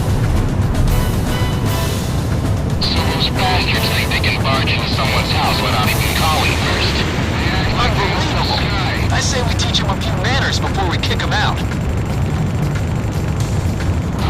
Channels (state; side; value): identical; both; correlation 1.00